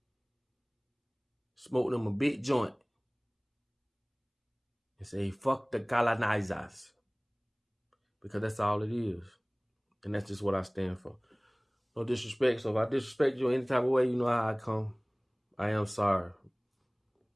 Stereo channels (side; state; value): both; identical; correlation 1.00